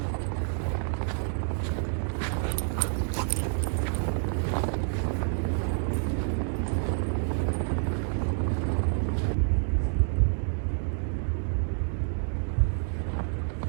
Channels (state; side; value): silent; left; 59 dB below the other